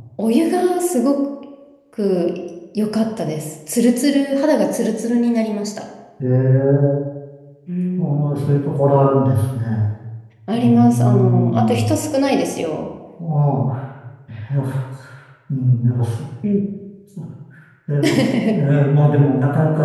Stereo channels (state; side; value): identical; both; correlation 1.00